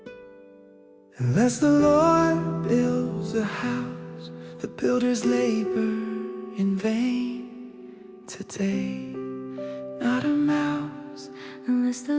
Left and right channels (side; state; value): both; identical; correlation 1.00